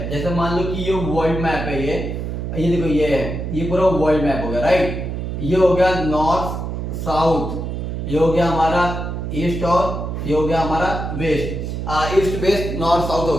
जैसे मान लो कि ये वर्ल्ड मैप है, ये देखो ये है, ये पूरा वर्ल्ड मैप हो गया, राइट। ये हो गया नॉर्थ साउथ, ये हो गया हमारा ईस्ट और ये हो गया हमारा west, east west north south हो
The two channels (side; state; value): right; noise; hum, 4 dB below the sound